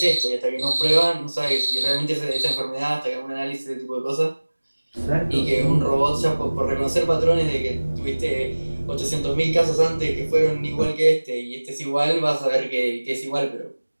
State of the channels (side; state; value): both; inverted; correlation -1.00